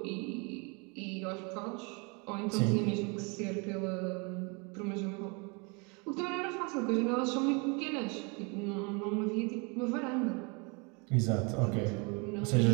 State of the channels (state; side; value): quieter; left; 31.8 dB